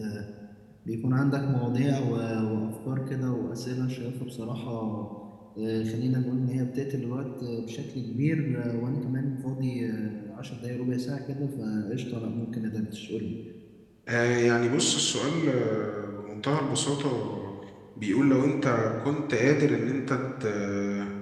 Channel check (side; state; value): both; identical; correlation 1.00